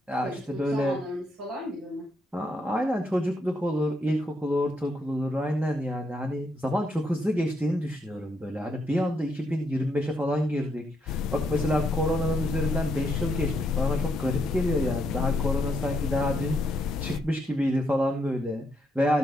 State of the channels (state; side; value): normal; both; correlation 0.77